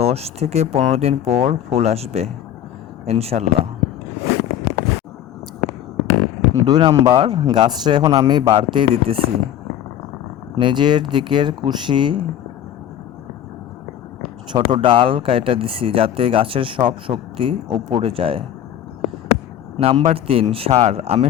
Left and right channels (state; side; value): quieter; right; 10.9 dB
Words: থেকে 15 দিন পর ফুল আসবে ইনশাল্লাহ। 2 নাম্বার, গাছটা এখন আমি বাড়তেই দিতেছি। নিজের দিকের কুশি ছোট ডাল কাইটা দিছি, যাতে গাছের সব শক্তি উপরে যায়। নাম্বার 3, সার। আমি